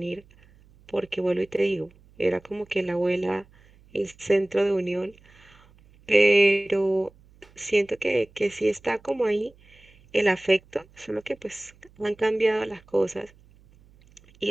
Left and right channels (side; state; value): right; noise; hum, 28 dB below the sound